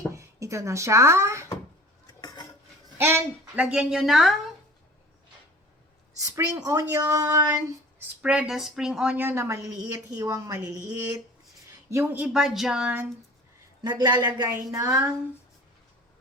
Ito na siya. And, lagyan nyo ng spring onion. Spread the spring onion na maliliit, hiwang maliliit. Yung iba dyan, naglalagay ng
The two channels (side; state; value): both; normal; correlation 0.43